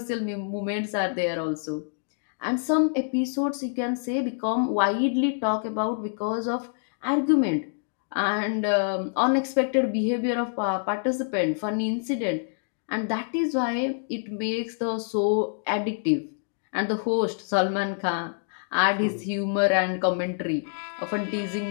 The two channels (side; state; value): right; silent; digital silence